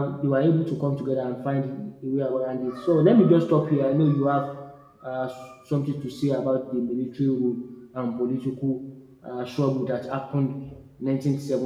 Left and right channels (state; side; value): identical; both; correlation 1.00